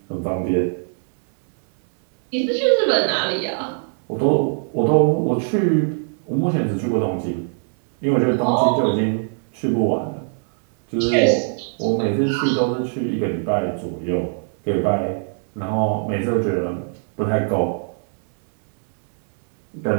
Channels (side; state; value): left; silent; 62 dB below the other